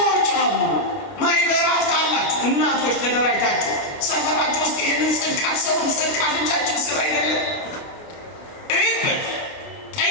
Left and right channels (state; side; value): late; right; 30 ms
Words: አሉ። ማይበራት አላችሁ እናቶች ተደራጅታችሁ ሰፈራችሁ ውስጥ ይህንን ጽድቅ አትሰሩም። ጽድቅ አፍንጫችን ስራ አይደለም። እይበት፣